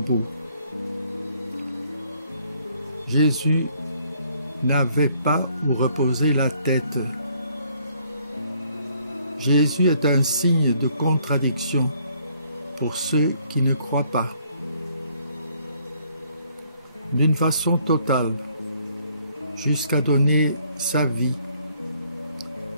Jésus n'avait pas où reposer la tête. Jésus est un signe de contradiction pour ceux qui ne croient pas. D'une façon totale, jusqu'à donner sa vie,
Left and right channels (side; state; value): both; inverted; correlation -0.65